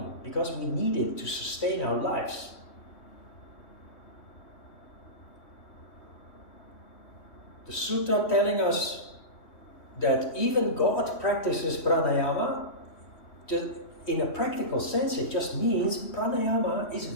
because we need it to sustain our lives. The sutra telling us that even God practices pranayama, in a practical sense, it just means pranayama is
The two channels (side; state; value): right; late; 3.1 ms